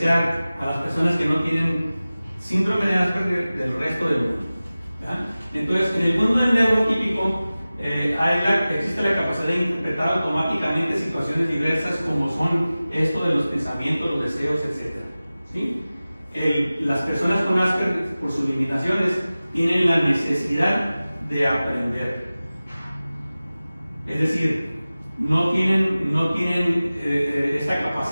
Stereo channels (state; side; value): inverted; both; correlation -0.97